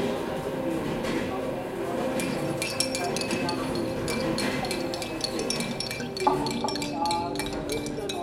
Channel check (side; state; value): both; identical; correlation 1.00